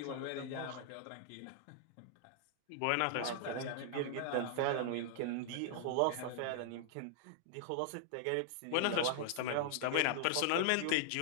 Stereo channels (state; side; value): different; both; correlation -0.01